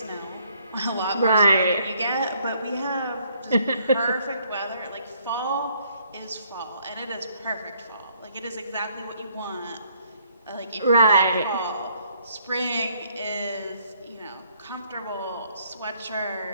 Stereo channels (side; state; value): both; inverted; correlation -0.67